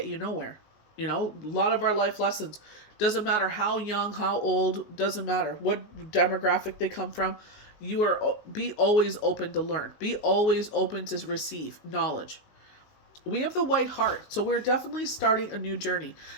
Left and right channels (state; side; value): late; right; 19 ms